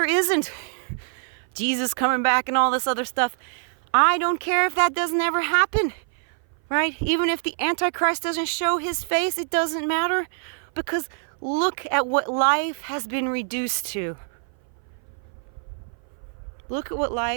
isn't Jesus coming back and all this other stuff, I don't care if that doesn't ever happen, right? Even if the Antichrist doesn't show his face, it doesn't matter, because look at what life has been reduced to. Look at what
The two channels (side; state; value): left; silent; 57 dB below the other